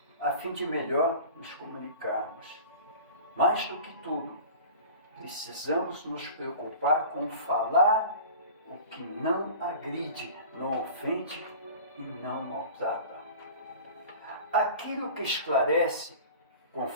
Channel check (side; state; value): both; inverted; correlation -0.39